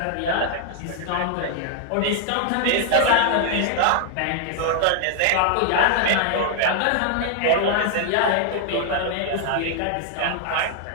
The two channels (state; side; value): different; both; correlation 0.00